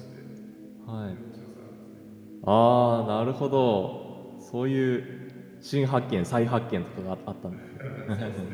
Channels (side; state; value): both; identical; correlation 1.00